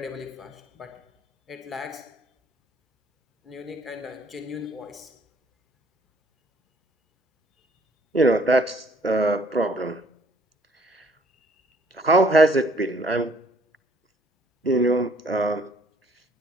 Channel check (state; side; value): normal; both; correlation 0.61